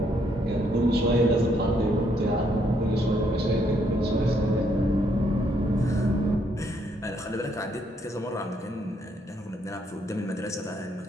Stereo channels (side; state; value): both; normal; correlation 0.72